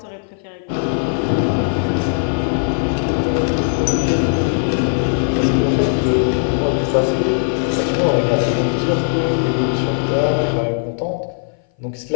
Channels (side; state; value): right; silent; 59 dB below the other